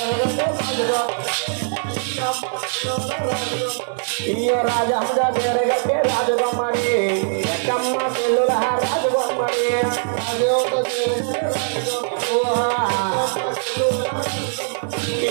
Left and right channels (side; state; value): left; silent; 65 dB below the other